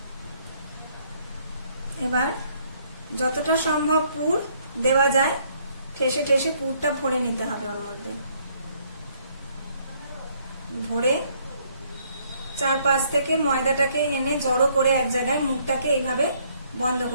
এবার যতটা সম্ভব পুর দেওয়া যায় ঠেসে ঠেসে পুরটা ভরে নিতে হবে। ওর মধ্যে ভরে চারপাশ থেকে ময়দাটাকে এনে জড়ো করে এক জায়গায় মুখটাকে এইভাবে বন্ধ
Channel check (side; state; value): both; inverted; correlation -0.67